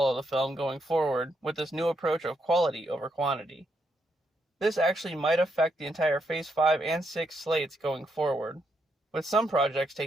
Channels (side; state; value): both; normal; correlation 0.79